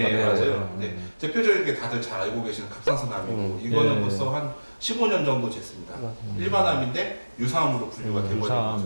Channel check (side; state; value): both; inverted; correlation -1.00